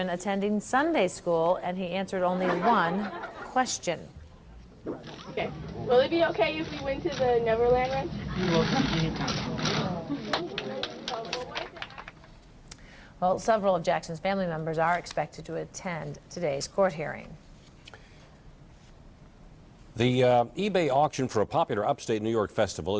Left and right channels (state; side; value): identical; both; correlation 1.00